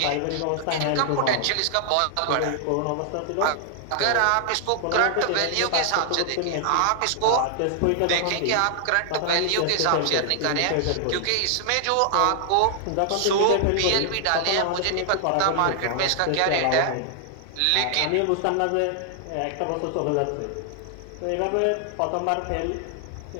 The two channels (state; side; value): different; both; correlation 0.00